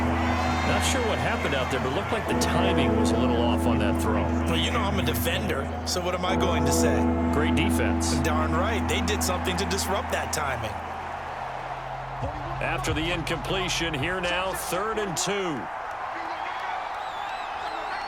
Not sure what happened out there, but it looked like the timing was a little off on that throw. Well, you know I'm a defender, so what am I going to say? Great defense. Darn right. They did something to disrupt that timing. After the incompletion, here now, 3rd and 2.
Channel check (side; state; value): both; identical; correlation 1.00